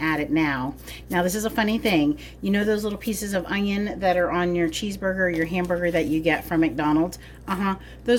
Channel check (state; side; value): identical; both; correlation 1.00